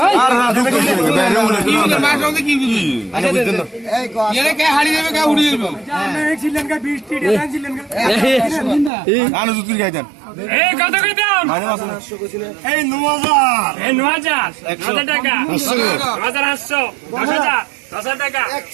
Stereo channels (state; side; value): drops out; left; at 8.9 s